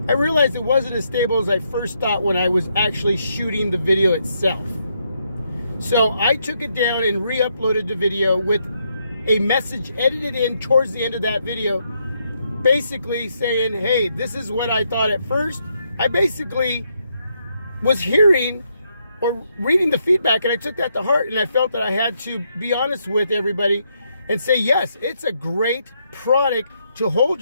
I realized it wasn't as stable as I first thought when I was actually shooting the video itself. So I took it down and re-uploaded the video with a message edited in towards the end of that video, basically saying, hey, this is what I thought at first, I basically was hearing or reading the feedback, and I took that to heart, and I felt that I had to be honest with everybody and say, yes, it's a great product to hold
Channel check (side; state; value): both; inverted; correlation -0.77